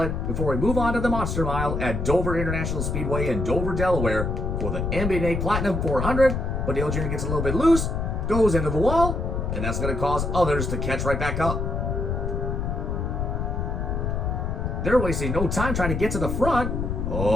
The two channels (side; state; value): left; noise; rumble, 1 dB below the sound